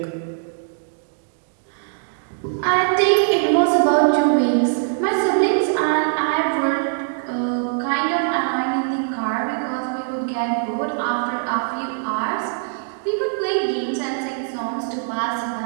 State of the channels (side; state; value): left; silent; digital silence